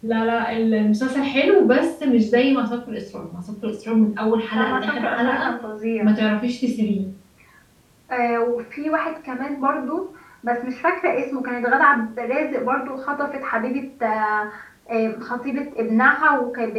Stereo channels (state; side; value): identical; both; correlation 1.00